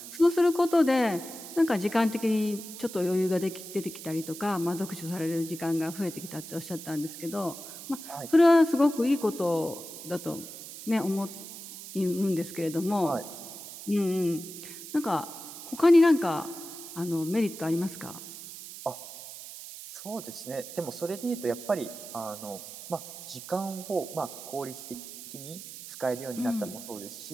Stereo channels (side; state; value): right; noise; hiss, 12 dB below the sound